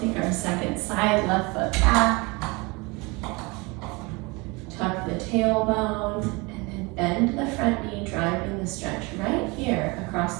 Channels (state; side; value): quieter; left; 26.4 dB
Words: our second side, left foot back. Tuck the tailbone, and then bend the front knee, driving the stretch right here